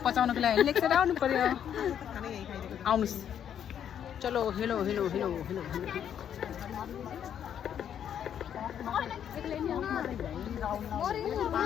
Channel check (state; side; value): quieter; right; 9.2 dB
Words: पचाउनको लागि लेक साइड आउनु पर्यो। आउनुहोस्। चलो hello hello hello hello hello.